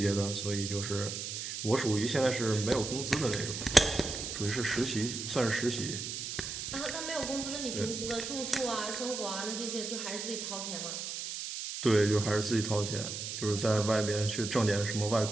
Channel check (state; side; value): noise; right; hiss, 5 dB below the sound